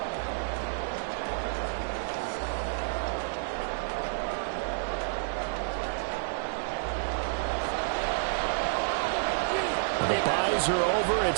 The byes are over.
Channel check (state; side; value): silent; left; digital silence